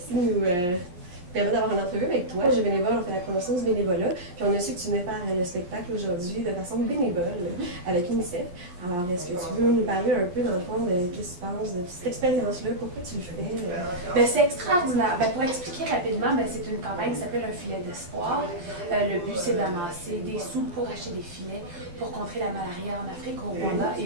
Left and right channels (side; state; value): left; late; 11 ms